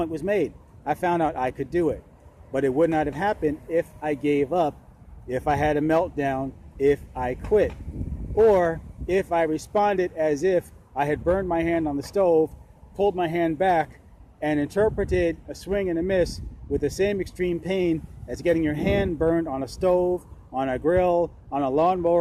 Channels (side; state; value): both; identical; correlation 1.00